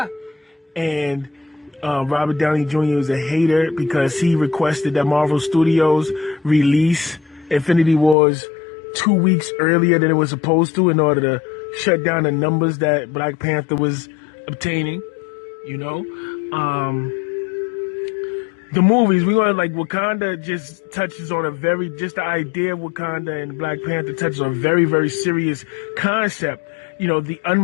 And Robert Downey Jr. is a hater because he requested that Marvel Studios release Infinity Wars 2 weeks earlier than it was supposed to in order to shut down the numbers that Black Panther was obtaining. The movies, we want Wakanda just touches on the idea of Wakanda, and Black Panther touches on a very, very serious concept, the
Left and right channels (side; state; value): right; drops out; at 8.2 s